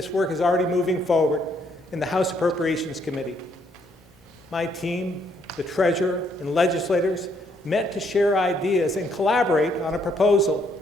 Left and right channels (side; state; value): both; normal; correlation 0.70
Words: work is already moving forward in the House Appropriations Committee. My team, the Treasurer, and legislators met to share ideas and collaborate on a proposal